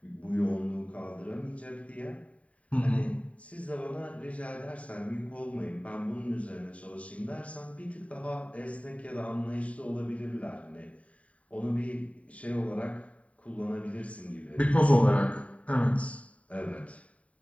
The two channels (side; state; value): right; late; 0.066 ms